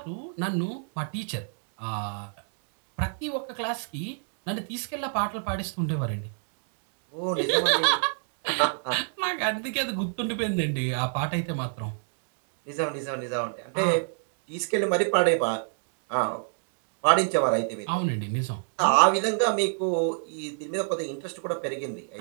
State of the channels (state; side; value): silent; left; digital silence